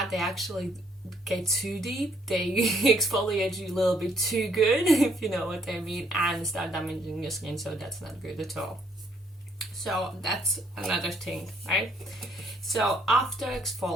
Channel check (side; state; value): both; normal; correlation 0.67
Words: they actually get too deep. They exfoliate you a little bit too good, if you know what I mean, and start damaging your skin, so that's not good at all. So that's another thing, right? So after